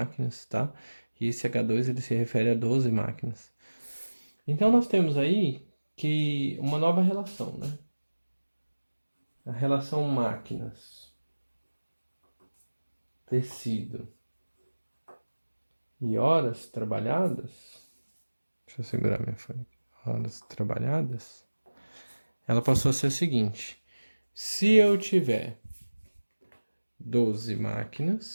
tá? E esse H2 ele se refere a 12 máquinas. Então, nós temos aí que uma nova relação, né? A relação máquinas, tecido e horas trabalhadas. Deixa eu segurar minha folha aqui. Horas trabalhadas. Ela passou a ser a seguinte. Se eu tiver 12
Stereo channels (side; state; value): both; inverted; correlation -1.00